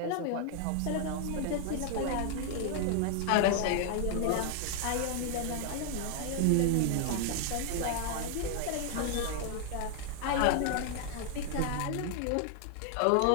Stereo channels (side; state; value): both; different; correlation 0.00